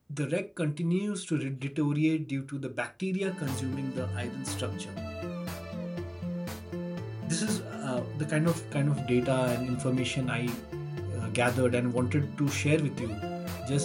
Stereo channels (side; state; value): both; identical; correlation 1.00